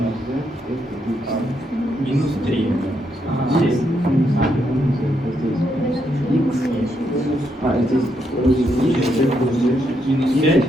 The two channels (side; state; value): both; normal; correlation 0.78